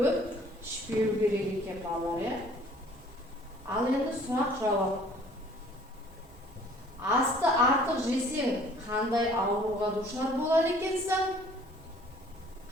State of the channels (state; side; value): normal; both; correlation 0.54